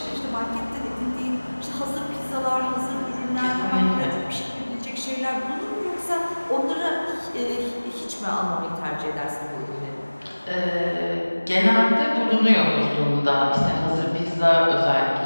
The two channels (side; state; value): both; inverted; correlation -1.00